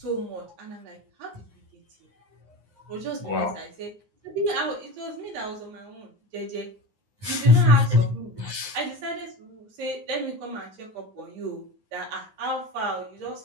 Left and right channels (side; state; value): left; late; 9.5 ms